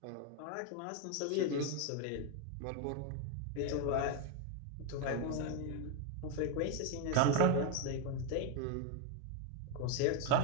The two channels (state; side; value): different; both; correlation 0.01